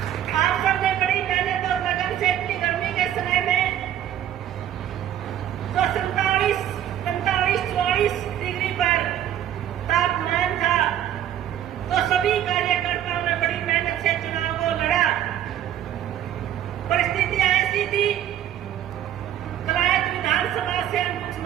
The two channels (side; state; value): left; quieter; 11.1 dB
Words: आप सबने बड़ी मेहनत और लगन से इतनी गर्मी के समय में जो 47-44 डिग्री पर तापमान था, तो सभी कार्यकर्ताओं ने बड़ी मेहनत से चुनाव को लड़ा। परिस्थितियां ऐसी थी, कलायत विधानसभा से हम कुछ